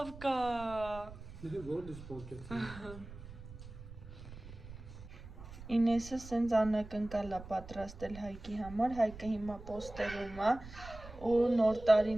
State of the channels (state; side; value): noise; right; rumble, 14 dB below the sound